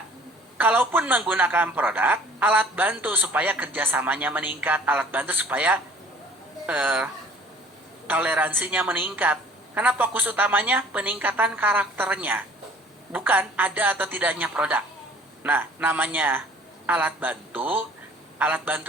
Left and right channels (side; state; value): both; normal; correlation 0.51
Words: Kalaupun menggunakan produk, alat bantu supaya kerjasamanya meningkat, alat bantu supaya toleransinya meningkat. Karena fokus utamanya peningkatan karakternya, bukan ada atau tidaknya produk. Nah, namanya alat bantu